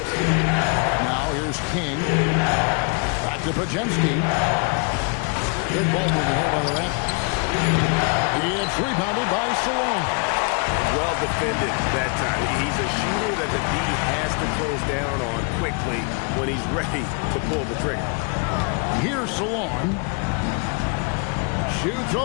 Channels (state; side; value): quieter; right; 35.7 dB